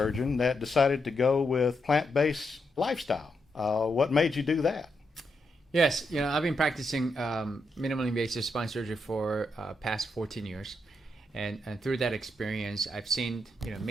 that decided to go with plant-based lifestyle. What made you do that? Yes, I've been practicing minimally invasive spine surgery for past 14 years. And through that experience, I've seen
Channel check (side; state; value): both; normal; correlation 0.82